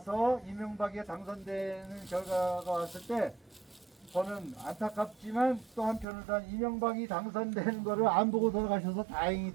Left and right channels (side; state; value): left; drops out; at 6.1 s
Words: 이명박이 당선되는 결과가 왔을 때 저는 안타깝지만 또 한편으로는 이명박이 당선되는 거를 안 보고 돌아가셔서